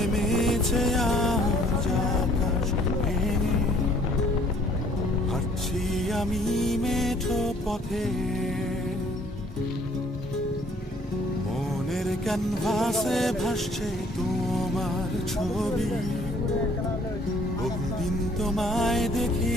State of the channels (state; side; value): normal; both; correlation 0.59